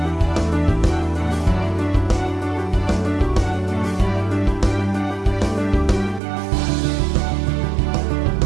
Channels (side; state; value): left; drops out; at 6.2 s